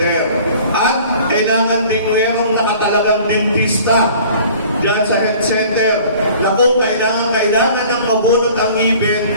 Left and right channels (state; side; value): inverted; both; correlation -0.49